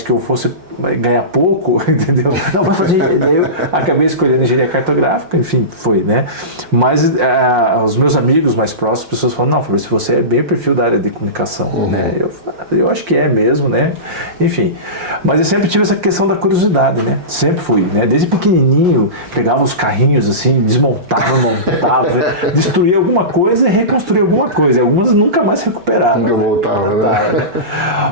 que eu fosse ganhar pouco, entendeu? Não, vai fazer. Eu acabei escolhendo engenharia cartográfica, enfim, foi, né? Mas os meus amigos mais próximos, as pessoas falam, não, Fabrício, você é bem o perfil da área de comunicação, né? Eu acho que é mesmo, né? Enfim, mas eu sempre tive essa questão da curiosidade, né? Sempre fui, né? Desde pequenininho, pegava os carrinhos assim, desmontava, montava, destruía alguma coisa e reconstruía alguma coisa. E algumas nunca mais recuperaram, né? Né?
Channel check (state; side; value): late; left; 5.6 ms